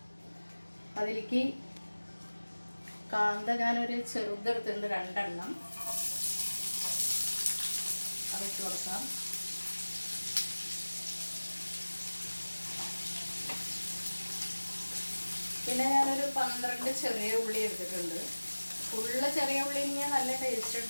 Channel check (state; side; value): inverted; both; correlation -1.00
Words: അതിലേക്ക് കാന്ത ഞാനൊരു ചെറുതെടുത്തിട്ടുണ്ട്, 2 എണ്ണം. അതിട്ട് കൊടുക്കാം. പിന്നെ ഞാനൊരു 12 ചെറിയ ഉള്ളി എടുത്തിട്ടുണ്ട്. ഫുള്ള് ചെറിയ ഉള്ളി ഇങ്ങനെ നല്ല ടേസ്റ്റ്